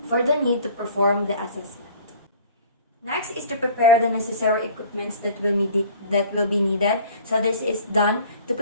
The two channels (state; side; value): inverted; both; correlation -0.47